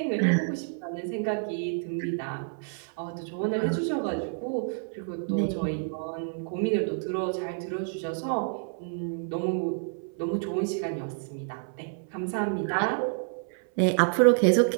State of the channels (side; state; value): left; silent; 59 dB below the other